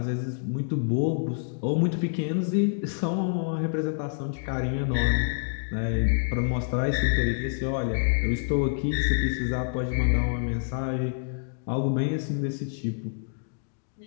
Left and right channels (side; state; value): right; silent; digital silence